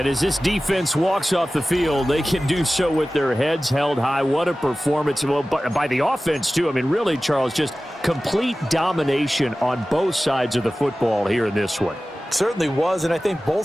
as this defense walks off the field, they can do so with their heads held high. What a performance. Well, by the offense, too. I mean, really, Charles, just complete domination on both sides of the football here in this one. Certainly was, and I think both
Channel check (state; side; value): normal; both; correlation 0.96